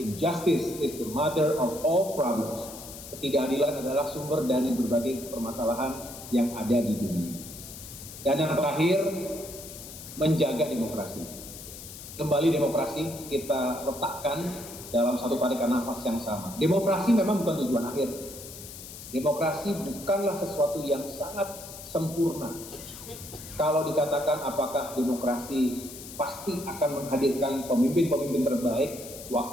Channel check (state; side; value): noise; left; hiss, 13 dB below the sound